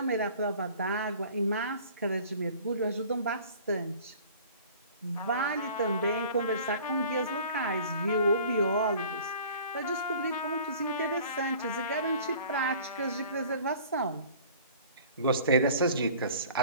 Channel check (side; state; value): both; inverted; correlation -0.47